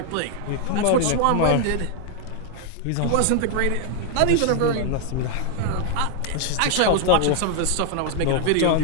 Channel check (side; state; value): both; different; correlation 0.00